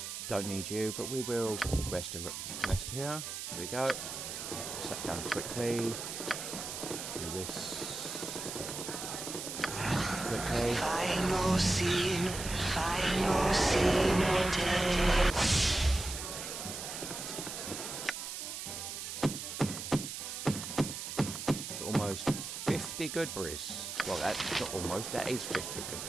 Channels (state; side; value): noise; right; hiss, 6 dB below the sound